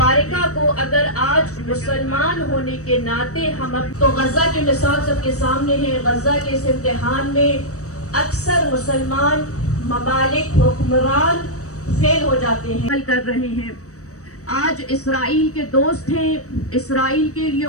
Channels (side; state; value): right; late; 0.65 ms